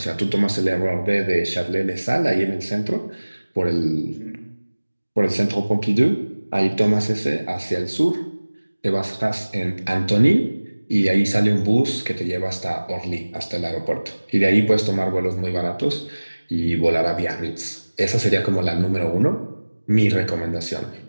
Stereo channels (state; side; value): inverted; both; correlation -1.00